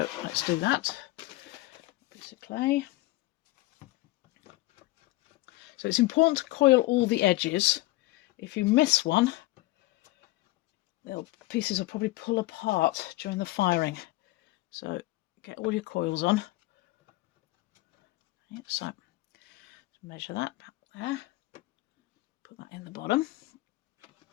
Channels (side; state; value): right; quieter; 19.2 dB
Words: let's do that. Piece of clay. So it's important to coil all the edges. If you miss one, the pieces will probably pull apart during the firing. So get all your coils on. Okay, so measure that there.